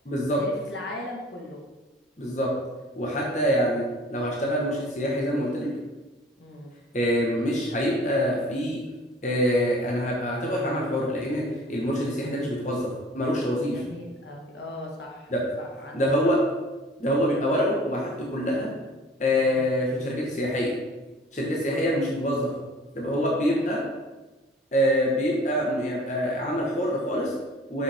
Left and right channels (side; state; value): both; normal; correlation 0.48